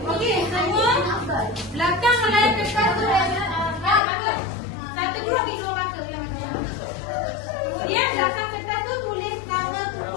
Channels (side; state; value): right; drops out; at 4.0 s